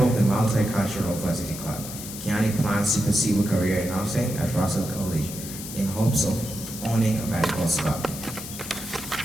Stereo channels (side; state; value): left; noise; hiss, 10 dB below the sound